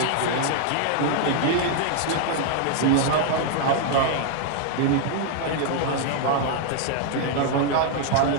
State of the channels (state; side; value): different; both; correlation 0.00